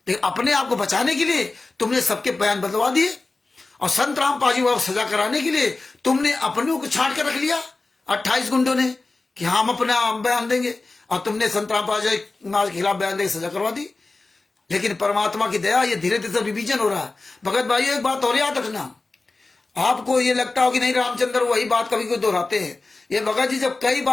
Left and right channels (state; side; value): quieter; right; 3.4 dB